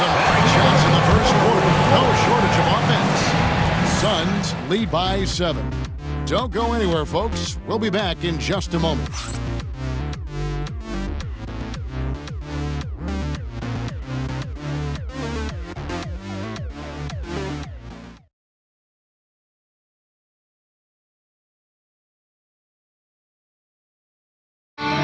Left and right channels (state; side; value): identical; both; correlation 1.00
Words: bright shots in the first quarter. No shortage of offense. Suns lead by 7. Don't go anywhere, folks. We'll be back in just a moment.